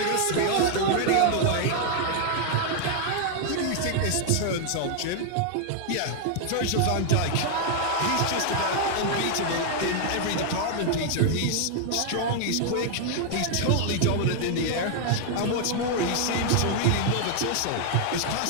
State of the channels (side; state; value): both; different; correlation 0.00